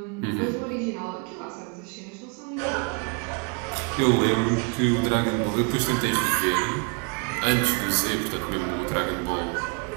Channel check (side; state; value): left; quieter; 34.0 dB